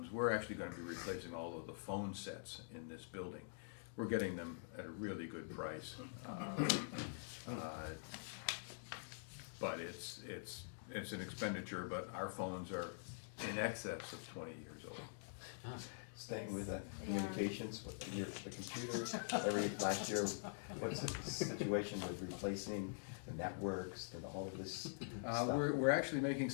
We're actually gonna be replacing all of the phone sets in this building. We're getting them at a really good price. But it's an expenditure, but our phones are in excess of 20 years old. Staying with communications, with the computer, last year, what's the situation with replacing the networks and all of this stuff? We're actually making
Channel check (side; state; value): right; silent; digital silence